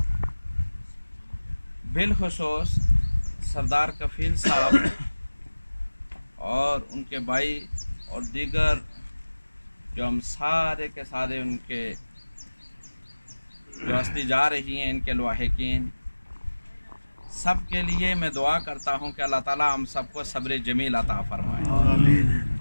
बिलखुसूस सरदार कफ़ील साहब और उनके भाई और दीगर जो हम सारे के सारे उनके जो हस्ती जा रही हैं, इनके लवाहिकीन, सब के लिए मैं दुआ करता हूं कि अल्लाह ताला हम सबको सब्र जमील अता फरमाए।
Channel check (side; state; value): both; inverted; correlation -1.00